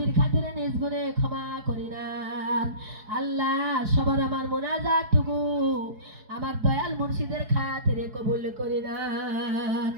খাতিরে নিজ গুণে ক্ষমা করে নেন আল্লাহ। সবার আমার মোনাজাতটুকু আমার দয়াল মুর্শিদের খাতিরে কবুল করে নেন।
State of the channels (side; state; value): left; late; 4.7 ms